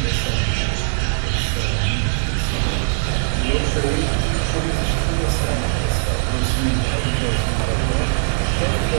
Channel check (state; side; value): silent; left; digital silence